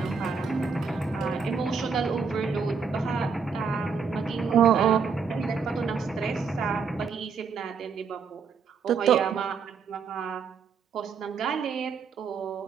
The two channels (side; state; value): left; quieter; 5.6 dB